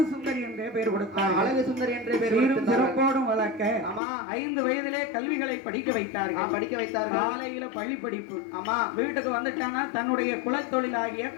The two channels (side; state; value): right; drops out; at 4.0 s